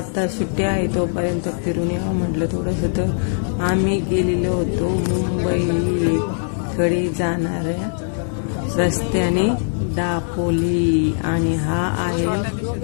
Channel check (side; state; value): right; silent; digital silence